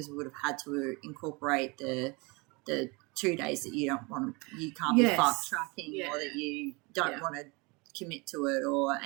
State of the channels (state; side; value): quieter; left; 27.6 dB